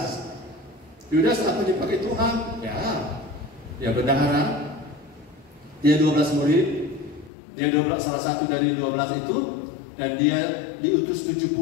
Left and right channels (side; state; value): right; drops out; at 7.3 s